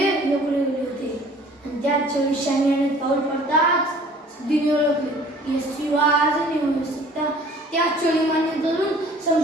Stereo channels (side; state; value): both; normal; correlation 0.51